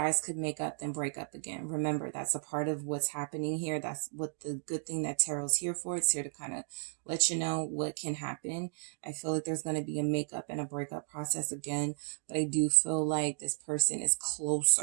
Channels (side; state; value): left; silent; digital silence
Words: could make up, then break up again. Remember, that's a part of what's happening here. That's what the good thing that Tarot's here for. It's here to kind of let you know what can happen. I feel like there's going to be a makeup and a breakup process again, but I do feel like this person is